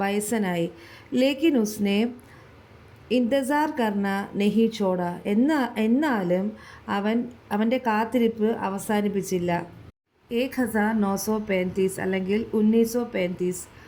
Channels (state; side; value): identical; both; correlation 1.00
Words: വയസ്സനായി. ലേക്കിൻ ഉസ്നെ ഇന്തസാർ കർണ നഹി ചോട. എന്നാലും അവൻ്റെ കാത്തിരിപ്പ് അവസാനിപ്പിച്ചില്ല. 1935 അല്ലെങ്കിൽ 1935